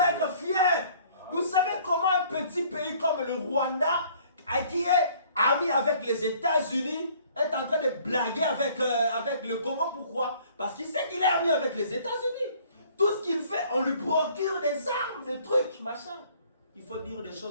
être fier. Vous savez comment un petit pays comme le Rwanda, qui est ami avec les États-Unis, est en train de blaguer avec le Congo? Pourquoi? Parce qu'il sait qu'il est ami avec les États-Unis. Tout ce qu'il fait, on lui procure des armes, des trucs, machin. Il faut dire des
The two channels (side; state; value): both; inverted; correlation -0.57